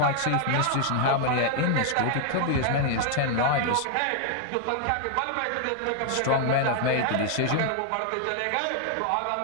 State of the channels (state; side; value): different; both; correlation 0.00